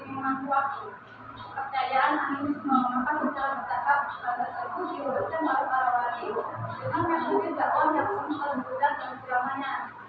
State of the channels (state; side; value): identical; both; correlation 1.00